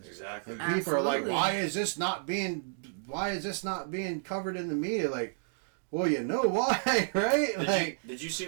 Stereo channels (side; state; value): left; silent; digital silence